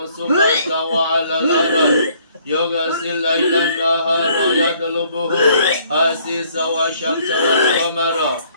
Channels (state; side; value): inverted; both; correlation -0.62